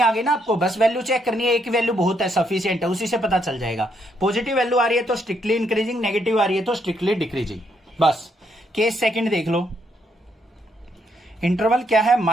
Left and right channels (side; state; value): both; normal; correlation 0.75